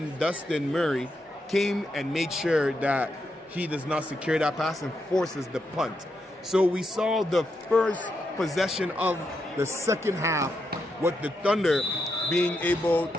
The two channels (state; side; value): normal; both; correlation 0.83